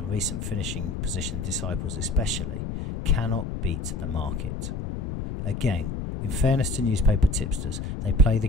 recent finishing position disciples especially, cannot beat the market. Again, in fairness to newspaper tipsters, they play the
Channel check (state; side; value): noise; left; rumble, 5 dB below the sound